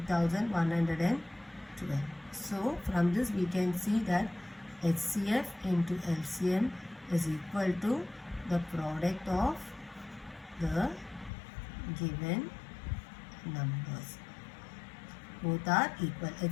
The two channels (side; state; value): right; drops out; at 11.3 s